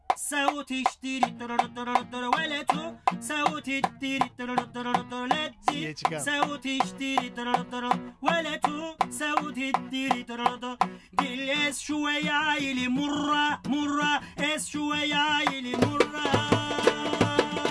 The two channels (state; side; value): identical; both; correlation 1.00